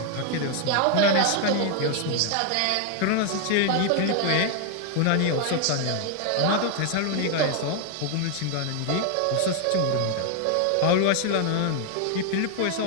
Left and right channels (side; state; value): both; different; correlation 0.00